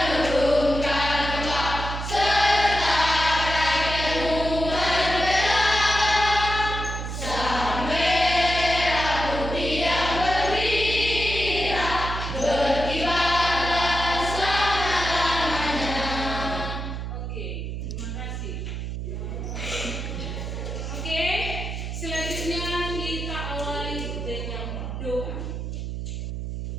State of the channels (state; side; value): noise; right; hum, 5 dB below the sound